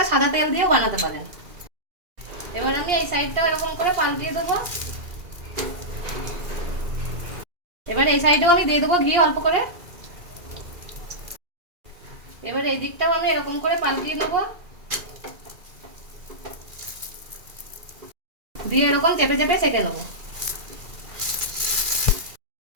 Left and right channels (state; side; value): late; left; 2.4 ms